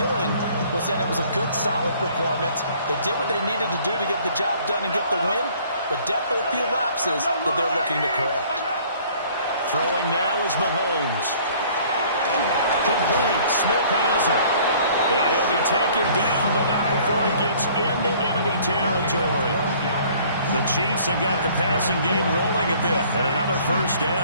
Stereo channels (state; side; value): inverted; both; correlation -0.55